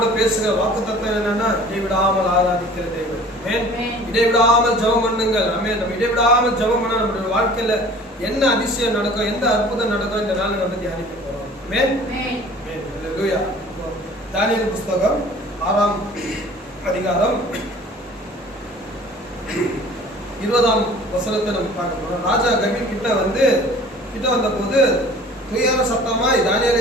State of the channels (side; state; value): both; normal; correlation 0.47